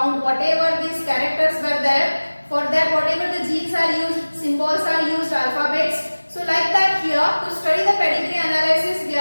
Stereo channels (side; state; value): both; inverted; correlation -1.00